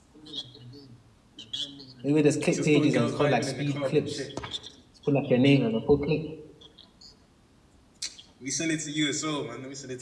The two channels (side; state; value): both; identical; correlation 1.00